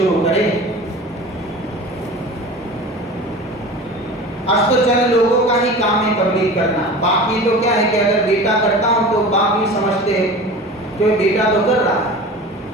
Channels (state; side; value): normal; both; correlation 0.36